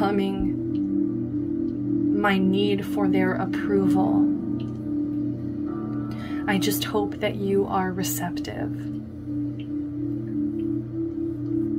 my need for their approval. I just hope that you are receptive.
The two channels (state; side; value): identical; both; correlation 1.00